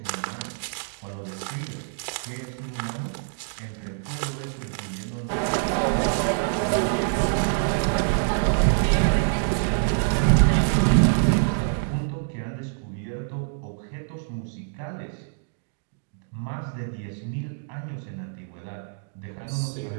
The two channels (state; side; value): silent; left; digital silence